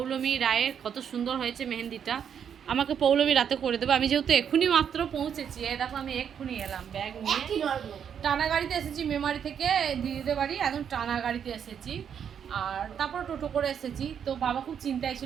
রায়ের। কত সুন্দর হয়েছে মেহেন্দিটা। আমাকে পৌলমী রাতে করে দেবে। আমি যেহেতু এক্ষুনি মাত্র পৌঁছেছি, এ দেখো আমি এক্ষুনি এলাম ব্যাগ নিয়ে। টানা গাড়িতে এসেছি মেমারি থেকে দিদিদের বাড়ি, একদম টানা গাড়িতে এসেছি। আর তারপর টোটো করে এসেছি। তো বাবা খুব চিন্তায়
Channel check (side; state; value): left; quieter; 8.1 dB